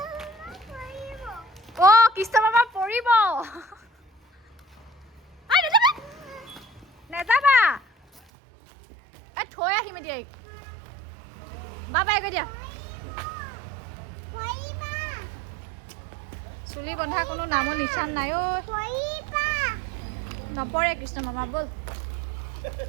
অ' কৃষ্ণ মামা পৰিব, নেযাবা, থৈ আহিম এতিয়া। বাই বাই কৈ দিয়া। চুলি বন্ধা কোনো নামৰ নিচান নাই ঐ। নপৰে কৃষ্ণ মামা, ব'ল।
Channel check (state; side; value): drops out; left; at 8.2 s